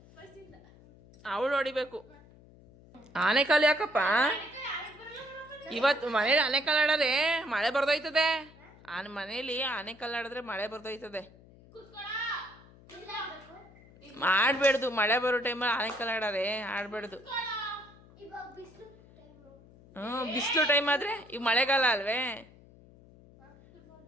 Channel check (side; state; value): left; noise; hum, 24 dB below the sound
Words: ಅವಳು ಹೊಡಿಬೇಕು ಆನೆಕಾಲು ಯಾಕಪ್ಪ ಇವತ್ತು ಮನೇಲಿ ಆನೆಕಾಲು ಆಡೋರೆ ಮಳೆ ಬರ್ದೋಯ್ತದೆ ಮನೇಲಿ ಆನೆಕಾಲು ಆಡಿದ್ರೆ ಮಳೆ ಬರ್ದೋಯ್ತದೆ ಆಡ್ಬೇಡ್ದು ಮಳೆ ಬರೋ ಟೈಮಲ್ಲಿ ಆನೆಕಾಲು ಆಡೋರೆ ಆಡ್ಬೇಡ್ದು ಬಿಸಿಲು ಟೈಮ್ ಆದ್ರೆ ಈಗ ಮಳೆಗಾಲ ಅಲ್ವೇ